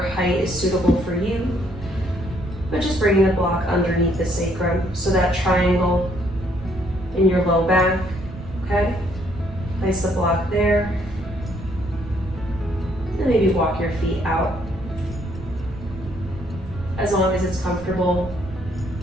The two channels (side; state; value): right; noise; rumble, 14 dB below the sound